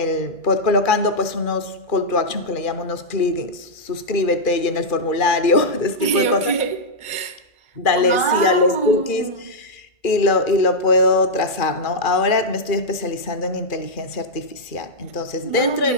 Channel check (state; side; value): late; right; 2.4 ms